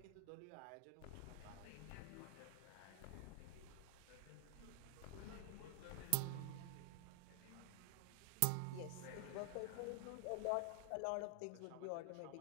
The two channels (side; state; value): both; different; correlation 0.00